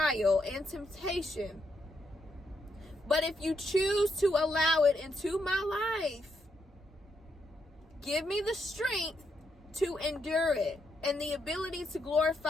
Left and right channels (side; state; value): both; normal; correlation 0.79